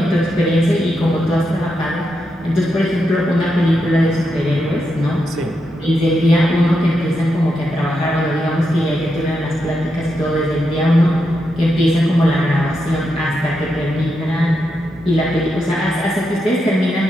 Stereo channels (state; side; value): normal; both; correlation 0.84